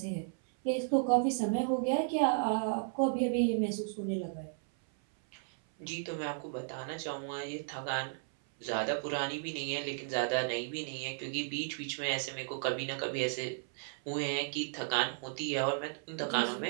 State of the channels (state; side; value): silent; left; 55 dB below the other